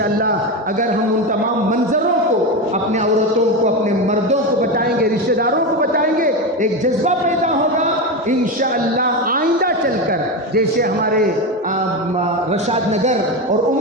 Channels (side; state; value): both; normal; correlation 0.16